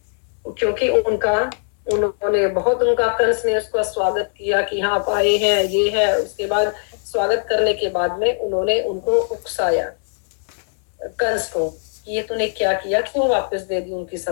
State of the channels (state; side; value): silent; right; 66 dB below the other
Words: क्योंकि उन्होंने बहुत उनका कंस ने उसका स्वागत किया कि हाँ आप आए हैं, ये है। उसके बाद स्वागत करने के बाद में उन्होंने उनको उकसाया कंस को, ये तूने क्या किया, क्यों वापस दे दी उनकी